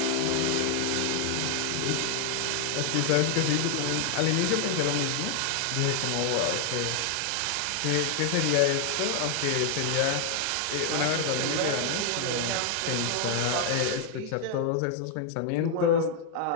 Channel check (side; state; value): both; different; correlation 0.00